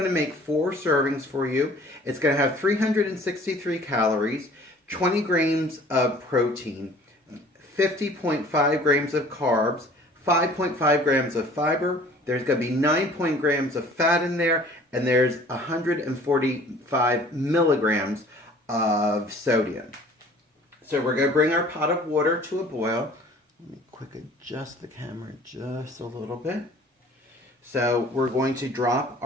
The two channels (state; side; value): normal; both; correlation 0.50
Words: to make 4 servings for you. It's going to have 363 calories, 20 grams of protein, 50.5 grams of carbs, 5.5 grams of fiber. There's going to be 9 grams of fat in there, and there's 145 milligrams of sodium. So we're going to bring our pot of water to a boil. Let me quick adjust the camera just a little bit. So we're going to drop